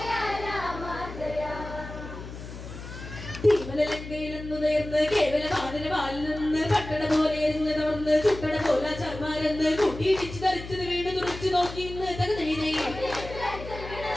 തീമലങ്കയിലെന്നു നേർന്ന് കേവല വാനര വാലിൽ നിന്ന് പട്ടണ പോലെ എരിഞ്ഞ് തവർന്ന് ചുട്ടട പോല ചർമാരെന്ന് കൂട്ടിയിടിച്ച് ധരിച്ചത് വീണ് തുറച്ചു നോക്കി ഇന്ന് തകതൈതൈ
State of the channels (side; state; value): left; noise; hum, 11 dB below the sound